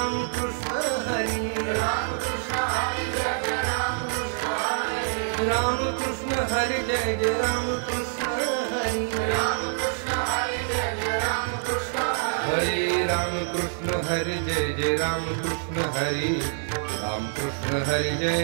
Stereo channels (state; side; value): silent; left; 59 dB below the other